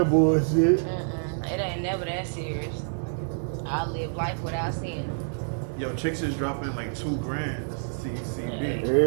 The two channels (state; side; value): silent; left; digital silence